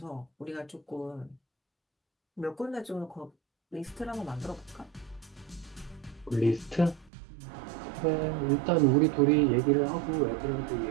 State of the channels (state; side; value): drops out; left; at 7.1 s